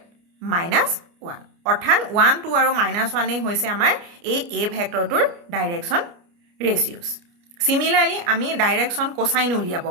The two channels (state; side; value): late; left; 29 ms